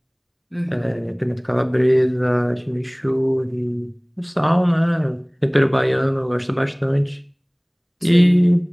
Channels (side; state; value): both; identical; correlation 1.00